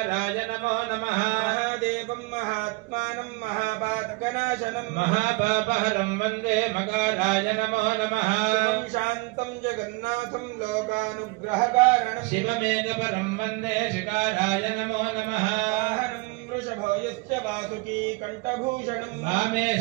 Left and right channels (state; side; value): quieter; left; 25.5 dB